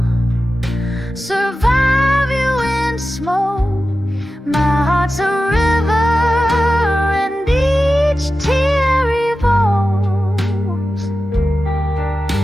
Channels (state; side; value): normal; both; correlation 0.93